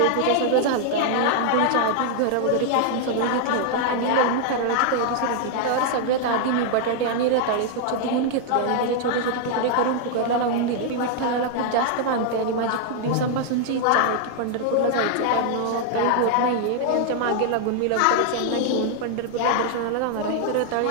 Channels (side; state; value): both; different; correlation -0.01